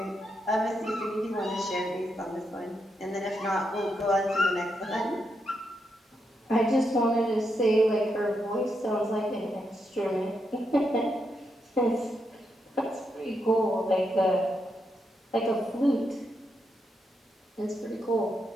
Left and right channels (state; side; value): normal; both; correlation 0.82